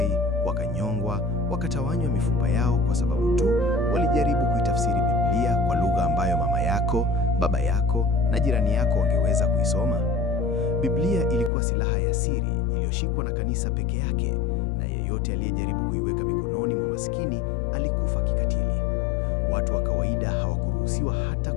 wakanyongwa, wakatawanywa mifupa yao kwa sababu tu walijaribu kuitafsiri Biblia kwa lugha ambayo mama yako, baba yako na jirani yako wangeweza kuisoma. Biblia ilikuwa silaha ya siri iliyoshikwa na kanisa peke yake, na yeyote aliyejaribu kuiweka mikononi mwa maskini alikufa kikatili. Watu wa kawaida hawakuruhusiwa hata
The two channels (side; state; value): right; drops out; at 11.5 s